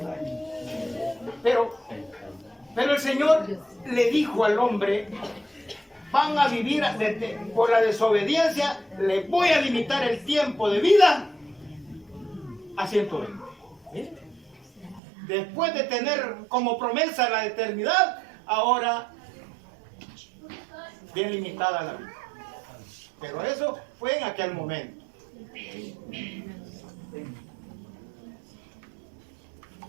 años. Pero el Señor le dijo al hombre, van a vivir por la desobediencia, le voy a limitar el tiempo de vida a 120. ¿Sí? Después de tener como promesa la eternidad, ahora bien limitada la vida. Pero eso fue en aquel momento.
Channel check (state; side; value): drops out; left; at 15.0 s